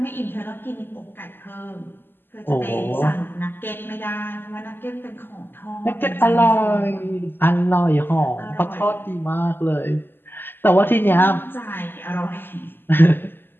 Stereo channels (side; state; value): right; late; 0.098 ms